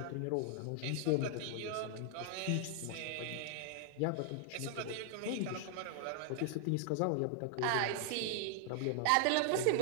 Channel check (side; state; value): both; different; correlation 0.00